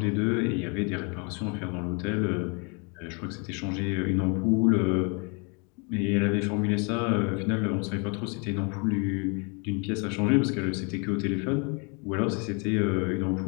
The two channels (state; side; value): quieter; right; 33.5 dB